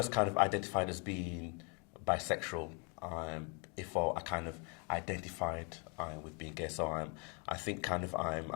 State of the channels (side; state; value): right; quieter; 35.2 dB